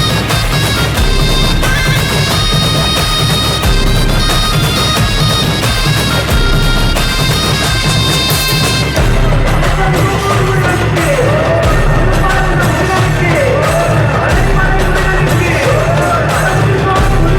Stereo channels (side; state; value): both; identical; correlation 1.00